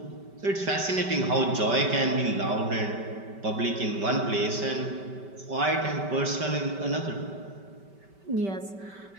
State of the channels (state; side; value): late; left; 5.2 ms